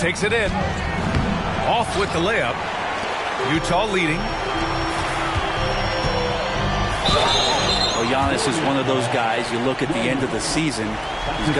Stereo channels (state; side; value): identical; both; correlation 1.00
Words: it in. Off with the layup. Utah leading. Well, Giannis is one of those guys, you look at the end of the season, he's